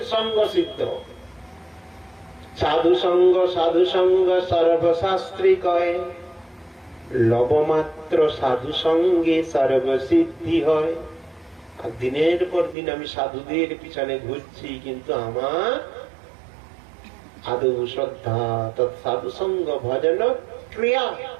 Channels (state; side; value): drops out; left; at 12.8 s